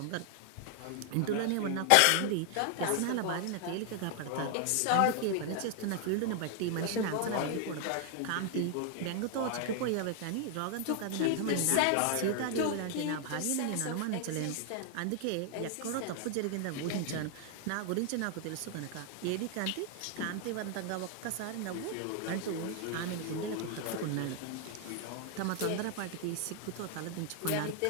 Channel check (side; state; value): both; different; correlation 0.00